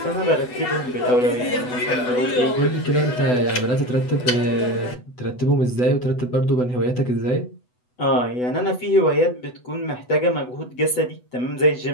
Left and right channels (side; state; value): right; late; 8.1 ms